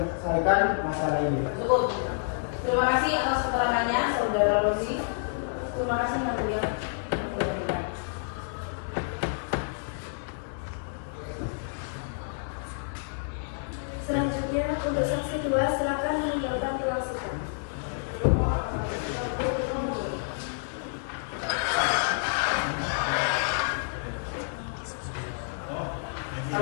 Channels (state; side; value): silent; right; digital silence